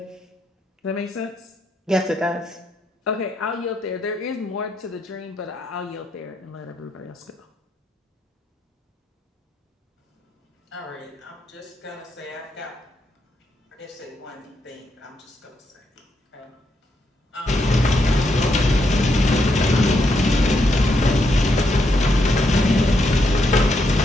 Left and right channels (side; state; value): both; normal; correlation 0.79